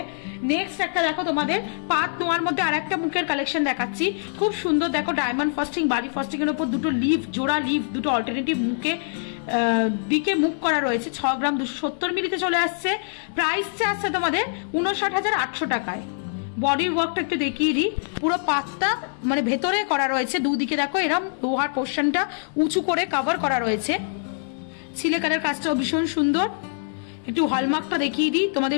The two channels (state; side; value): silent; right; digital silence